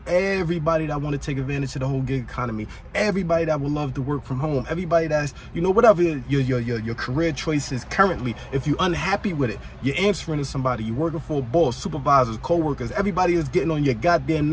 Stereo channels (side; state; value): both; identical; correlation 1.00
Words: everybody that want to take advantage of the whole gig economy, everybody that would love to work from home, everybody that's, you know, whatever your career choice is currently. If you're unhappy with it, you're answering to somebody, you're working for a boss, supervisors, co-workers, everybody is getting on your goddamn